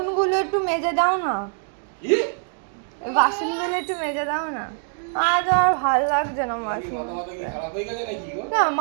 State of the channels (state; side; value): silent; left; 60 dB below the other